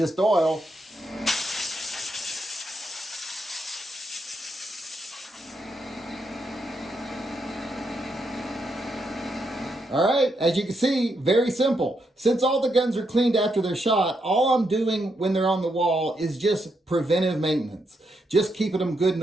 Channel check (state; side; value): normal; both; correlation 0.80